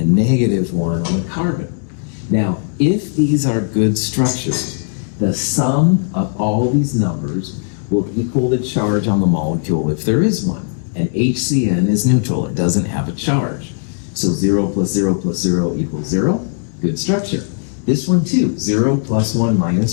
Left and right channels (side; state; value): right; silent; digital silence